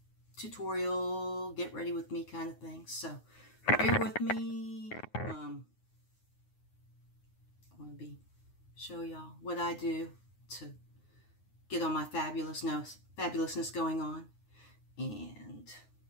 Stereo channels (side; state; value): right; late; 9.6 ms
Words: tutorial, get ready with me kind of thing, so bear with me. I want to show y'all what I do to get all my fabulousness going on, and